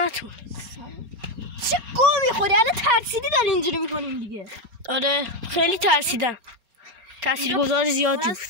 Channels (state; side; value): late; left; 4.3 ms